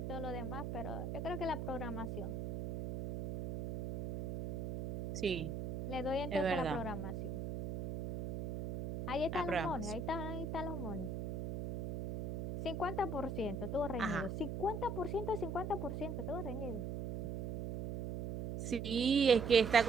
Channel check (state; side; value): noise; right; hum, 5 dB below the sound